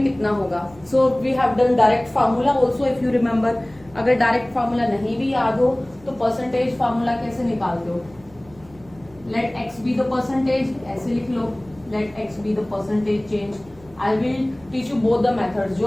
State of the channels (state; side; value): noise; right; hum, 24 dB below the sound